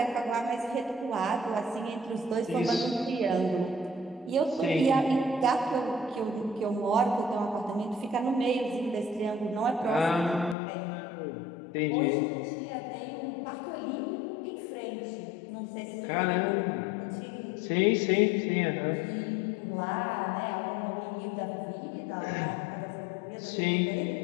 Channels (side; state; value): right; drops out; at 10.6 s